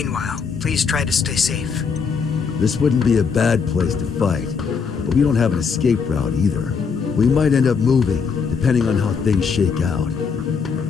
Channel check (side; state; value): right; quieter; 5.7 dB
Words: please try to stay safe. This wouldn't be a bad place to fight, but we don't have an escape route either. We might end up moving, depending on how things shake out.